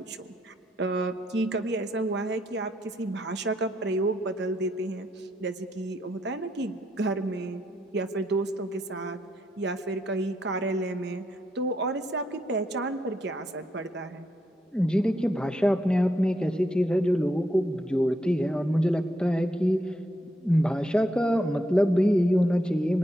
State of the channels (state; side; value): normal; both; correlation 0.78